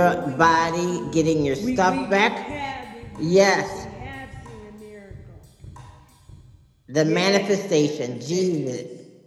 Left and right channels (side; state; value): both; identical; correlation 1.00